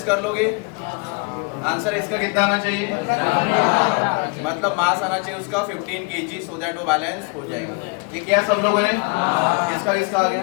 कर लोगे। आंसर इसका कितना आना चाहिए? मतलब मास आना चाहिए उसका 15 kg सो दैट वो बैलेंस हो जाएगा। ये क्या सब लोगों ने? किसका किसका आ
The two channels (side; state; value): right; quieter; 31.9 dB